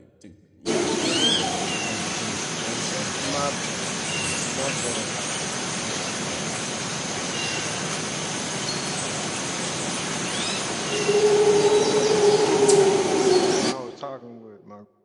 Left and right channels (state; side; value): identical; both; correlation 1.00